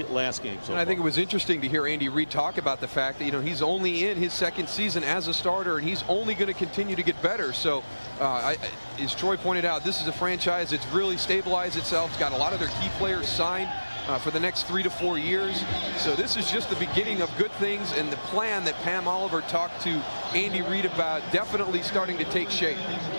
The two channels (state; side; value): inverted; both; correlation -1.00